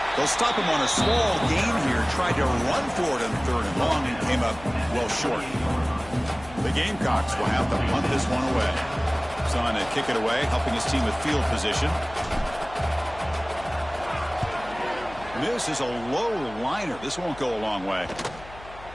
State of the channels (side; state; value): left; noise; hum, 18 dB below the sound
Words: They'll stop him on a small gain here. Tried to run for it on 3rd and long and came up well short. The Gamecocks will have to punt this one away. Trying to kick it away, helping his team with field position. This is a low liner. This won't go a long way.